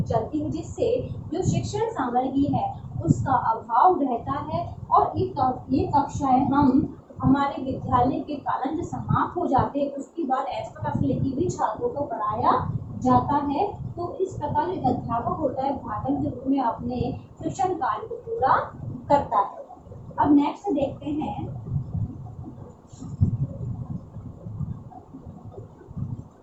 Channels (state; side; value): identical; both; correlation 1.00